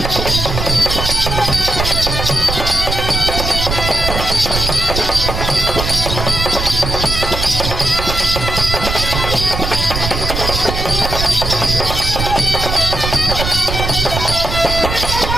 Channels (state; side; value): noise; right; rumble, 3 dB below the sound